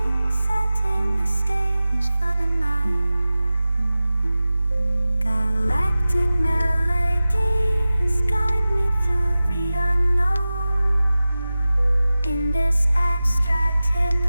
setting the stage for the night. Galactic melodies guide me through the unknown. In this abstract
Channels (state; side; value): inverted; both; correlation -0.96